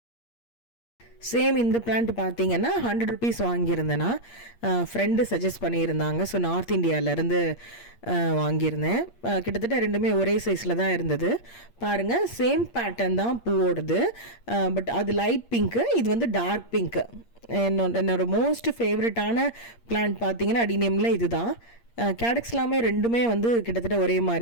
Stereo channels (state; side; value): late; right; 8.6 ms